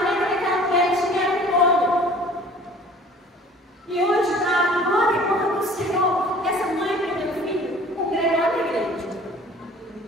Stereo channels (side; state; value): both; normal; correlation 0.49